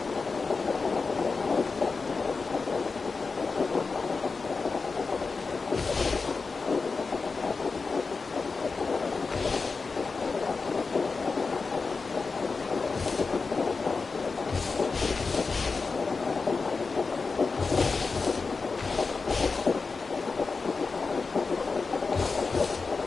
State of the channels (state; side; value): quieter; right; 4.4 dB